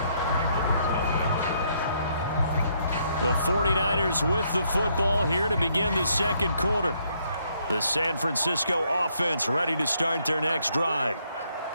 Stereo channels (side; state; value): both; inverted; correlation -0.72